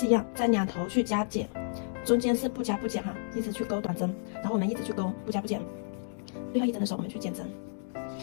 一样，在两头去加减，中间是不加不减哈，一直去钩短针，然后我们一直去钩不加不减。最后1针的时候我们去减针。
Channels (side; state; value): right; silent; digital silence